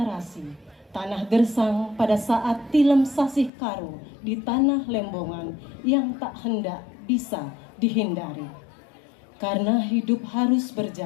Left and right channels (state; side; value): drops out; right; at 3.5 s